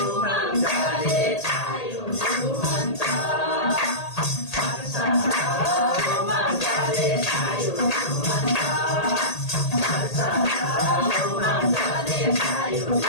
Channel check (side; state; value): right; late; 1.8 ms